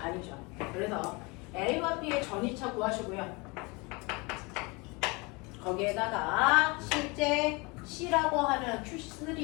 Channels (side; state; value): right; quieter; 27.3 dB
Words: 그래서 A와 B의 전이차 구하시고요. 거기에다가 실제 C라고 하는